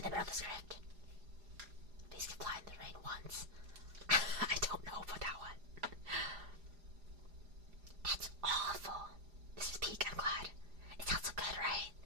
the middle of the script. Please can fly in the rain once. I don't know about that one. That's awful. This is peak, I'm glad. It sounds so good, right?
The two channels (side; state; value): left; late; 4.9 ms